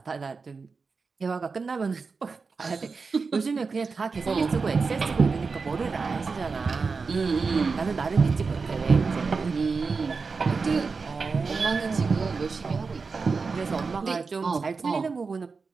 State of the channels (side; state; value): left; quieter; 4.7 dB